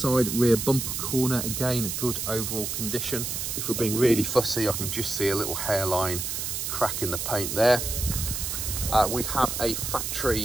rear bumper corner, again, good overall condition. If we're being really fussy, I can just see a little hairline crack in the paint there. We have a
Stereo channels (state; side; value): noise; right; hiss, 3 dB below the sound